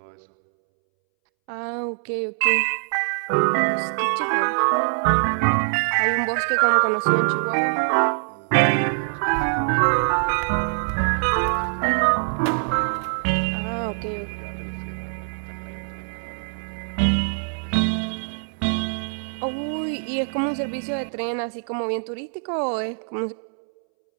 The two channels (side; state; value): left; silent; 63 dB below the other